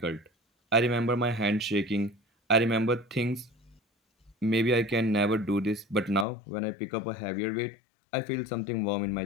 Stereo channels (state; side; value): drops out; right; at 6.2 s